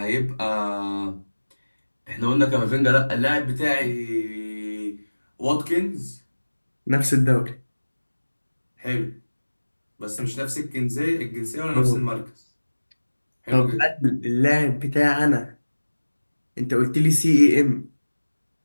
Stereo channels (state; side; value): inverted; both; correlation -1.00